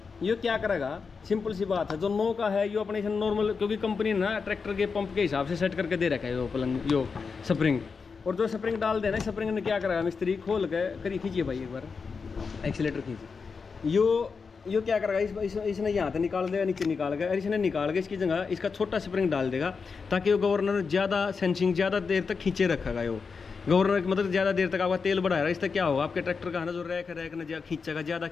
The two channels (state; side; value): quieter; right; 5.2 dB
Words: ये क्या करेगा, सिंपल सी बात है, जो 9 का है यो अपने नॉर्मल, क्योंकि कंपनी ना ट्रैक्टर के पंप के हिसाब से सेट करके दे रखा है यो पलंग, यो स्प्रिंग। और जो स्प्रिंग डाल देना, स्प्रिंग ने क्या करेगा, मिस्त्री खोल के करिए, खींचिए भाई एक बार एक्सीलेटर खींचिए, यो क्या करेगा, इसने यहाँ से निकाल देगा, नीचे निकाल गया, और इसने निकाल के इसकी जगह इसका छोटा स्प्रिंग डाल देगा, ताकि वो गवर्नर ज़्यादा सेंसिंग ज़्यादा देर तक खींचे रखेगा। यो गवर्नर मतलब ज़्यादा देर तक आपका तेल बढ़ाएगा, इससे क्या होगा, आपके ट्रैक्टर का है ना जो रैक ना खींचेगा, ज़्यादा